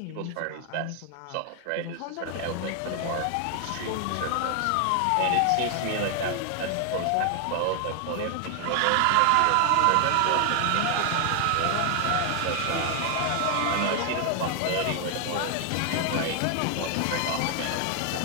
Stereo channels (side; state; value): both; different; correlation 0.00